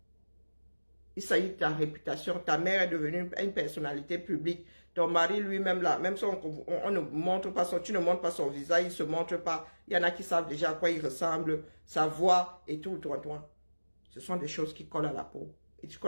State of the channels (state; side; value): inverted; both; correlation -1.00